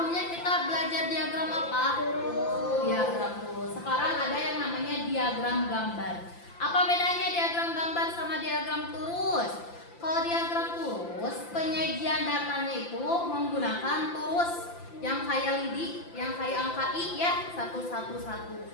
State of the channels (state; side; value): late; right; 5.8 ms